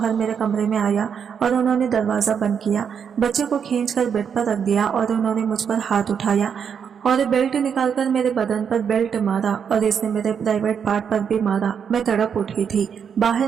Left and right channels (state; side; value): quieter; left; 7.3 dB